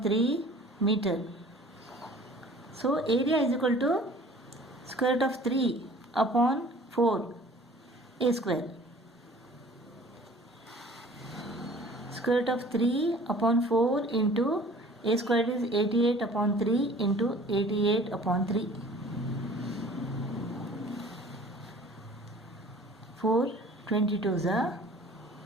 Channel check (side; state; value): both; normal; correlation 0.49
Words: 3 meter. So area is equal to square root of 3 upon 4 a square. Square root of 3 upon 4 into a squared is 88 upon 3 into 88 upon 3. 4 22s are